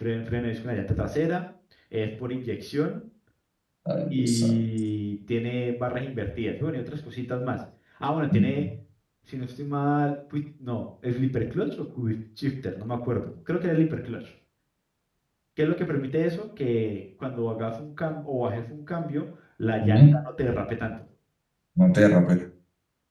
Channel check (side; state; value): both; identical; correlation 1.00